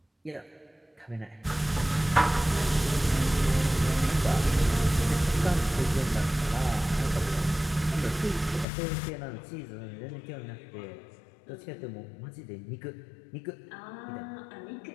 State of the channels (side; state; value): right; drops out; at 8.7 s